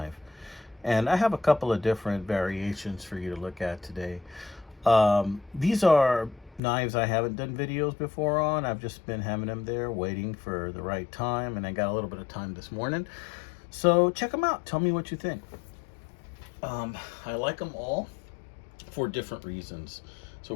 And I have a couple of different variations for you to look at today. These are knives I haven't done videos before on. I've just been having them there waiting for the right time, and I got a little bit of time this morning. So check them out. Tell me what you think. I like them all for different reasons. So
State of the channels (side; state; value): right; drops out; at 6.6 s